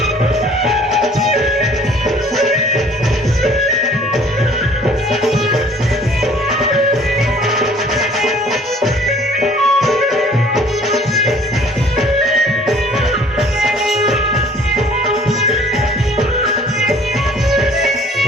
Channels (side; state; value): both; normal; correlation 0.54